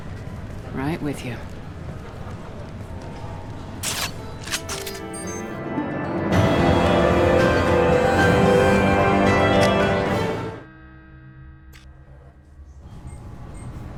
Right with you.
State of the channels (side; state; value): both; identical; correlation 1.00